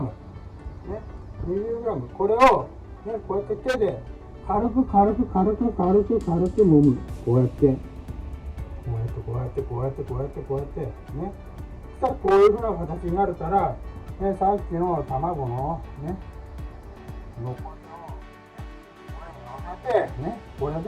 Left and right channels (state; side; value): identical; both; correlation 1.00